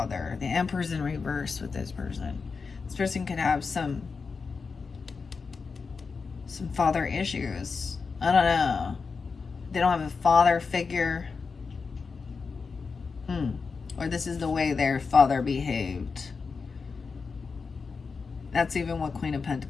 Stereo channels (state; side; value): quieter; right; 4.9 dB